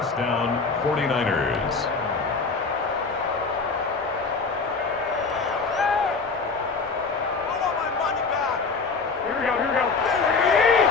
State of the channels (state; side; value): quieter; right; 4.5 dB